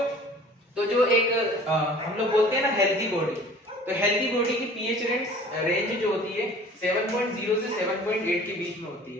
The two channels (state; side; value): normal; both; correlation 0.47